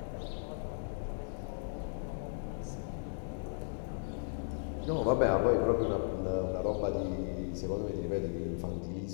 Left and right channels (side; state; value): right; silent; 54 dB below the other